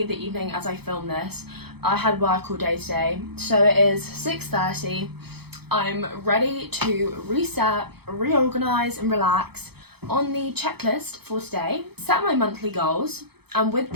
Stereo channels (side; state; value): left; late; 0.97 ms